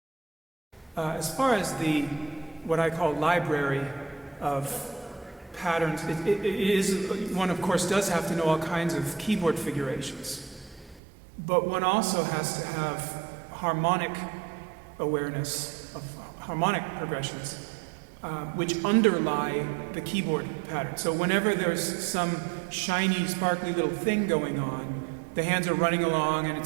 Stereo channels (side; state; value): left; drops out; at 11.0 s